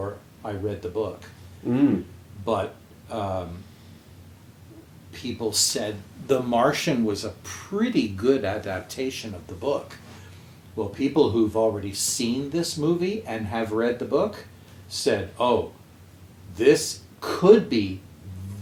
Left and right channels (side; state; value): both; identical; correlation 1.00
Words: I read the book. But people said The Martian was a pretty good adaptation of the book. Well, people who've already seen this movie and have read the book said, oh, this could be